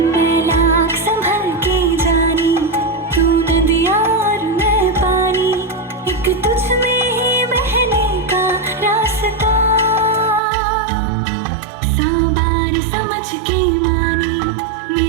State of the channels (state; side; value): drops out; left; at 10.4 s